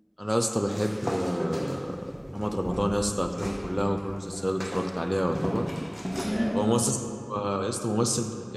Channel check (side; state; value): both; identical; correlation 1.00